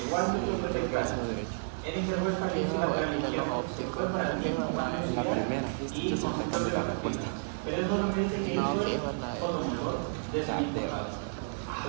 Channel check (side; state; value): left; silent; digital silence